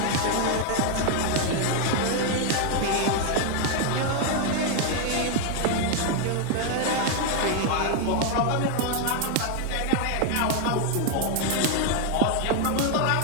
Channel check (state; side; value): different; both; correlation 0.00